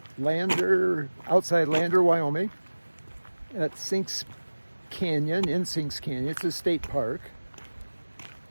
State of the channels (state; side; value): inverted; both; correlation -1.00